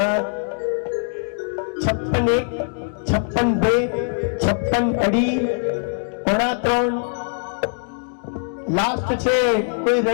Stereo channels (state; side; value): silent; right; digital silence